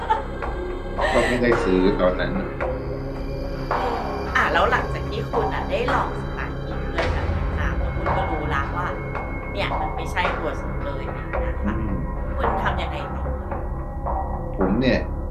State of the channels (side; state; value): both; identical; correlation 1.00